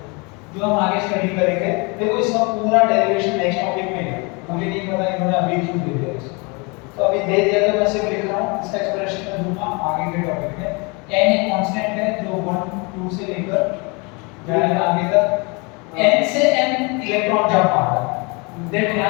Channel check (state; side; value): quieter; right; 29.7 dB